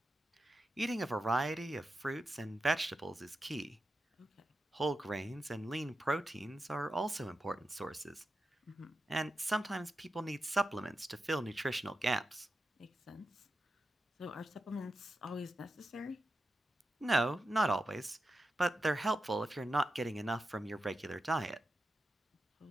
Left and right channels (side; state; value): both; normal; correlation 0.90